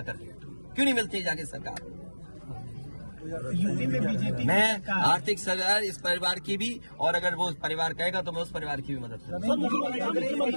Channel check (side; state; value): both; inverted; correlation -1.00